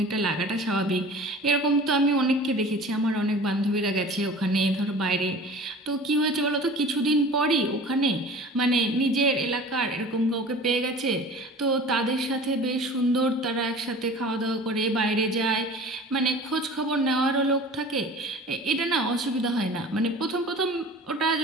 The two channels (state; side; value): normal; both; correlation 0.41